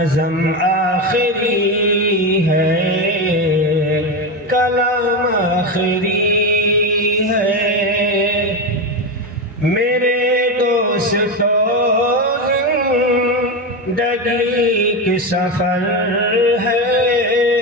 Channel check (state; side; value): normal; both; correlation 0.15